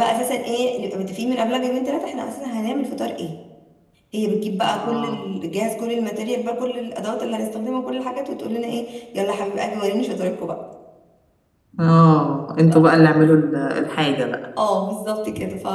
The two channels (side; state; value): both; identical; correlation 1.00